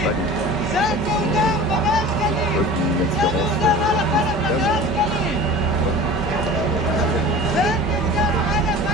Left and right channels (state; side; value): normal; both; correlation 0.39